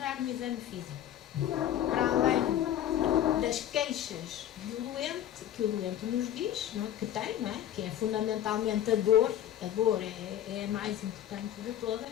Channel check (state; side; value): quieter; right; 11.4 dB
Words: no exame físico? Para além das queixas do doente, que o doente nos diz, não é? Que tem, não é? Que é fundamentalmente a dor é a mais importante de